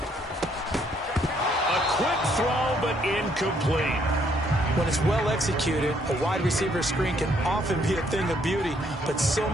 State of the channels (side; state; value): both; normal; correlation 0.68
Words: A quick throw, but incomplete. When it's well executed, a wide receiver screen can often be a thing of beauty, but so